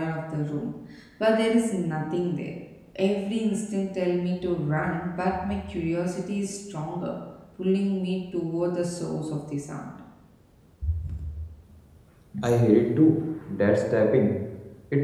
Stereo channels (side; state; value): both; identical; correlation 1.00